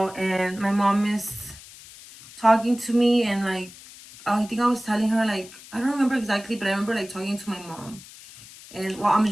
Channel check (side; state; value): left; noise; hiss, 19 dB below the sound